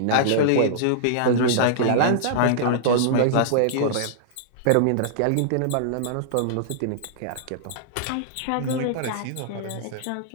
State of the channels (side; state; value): both; different; correlation -0.02